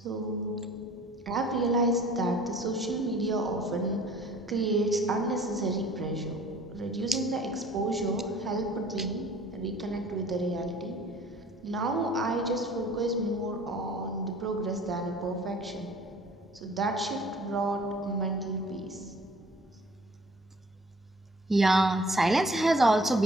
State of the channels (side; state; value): both; normal; correlation 0.52